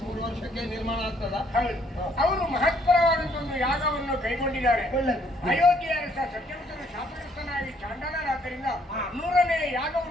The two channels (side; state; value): both; normal; correlation 0.67